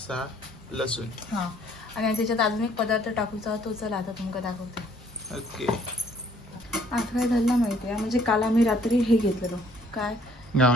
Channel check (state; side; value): normal; both; correlation 0.62